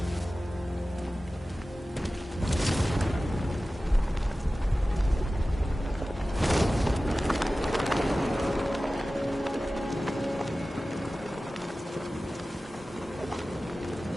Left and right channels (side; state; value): both; normal; correlation 0.96